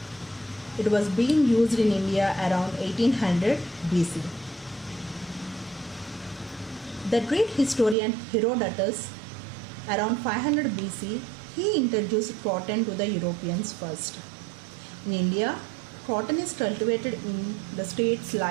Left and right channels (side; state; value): left; drops out; at 8.0 s